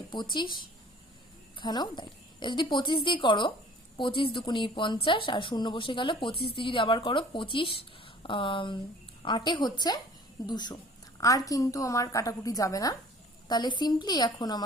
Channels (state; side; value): normal; both; correlation 0.50